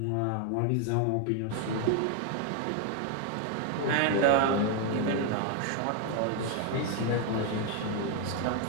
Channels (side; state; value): both; different; correlation 0.01